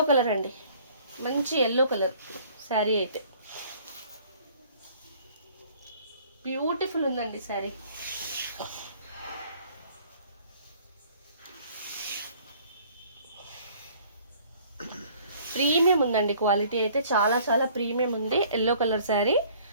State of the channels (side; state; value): both; inverted; correlation -0.55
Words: కలర్ అండి, మంచి ఎల్లో కలర్ శారీ అయితే బ్యూటిఫుల్ ఉందండి శారీ. ప్రీమియం ఉందండి, క్వాలిటీ అయితే చాలా చాలా ప్రీమియం ఉంది. ఎల్లో కలర్ శారీ